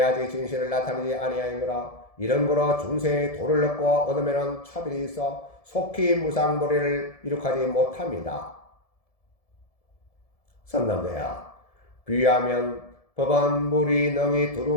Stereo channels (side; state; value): right; late; 1.7 ms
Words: 아직 진실을 나타내지 아니하였노라. 이런 거로 중생의 도를 얻고 얻으면은 차별이 있어 속히 무상보리를 이룩하지 못합니다. 선남대야, 비유하면 법은 물이 능히